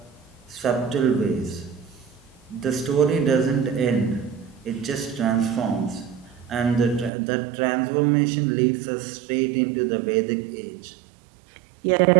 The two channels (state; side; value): drops out; left; at 7.1 s